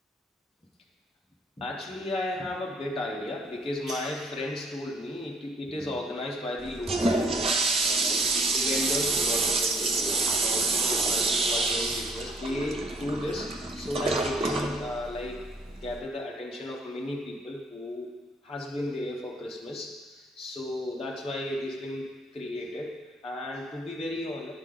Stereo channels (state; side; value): normal; both; correlation 0.63